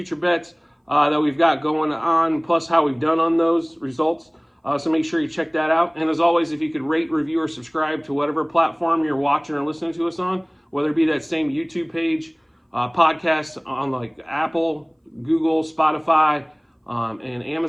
bets that we've got going on, plus how we've done on those results. So make sure you check that out. And as always, if you could rate, review, or subscribe to whatever platform you're watching or listening to us on, whether it be that same YouTube page podcasts on like Apple, Google, Spotify, and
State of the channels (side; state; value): both; identical; correlation 1.00